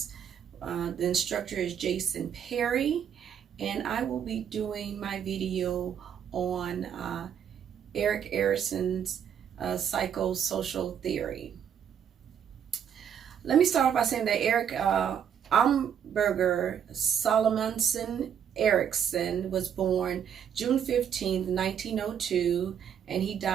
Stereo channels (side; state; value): left; quieter; 8.5 dB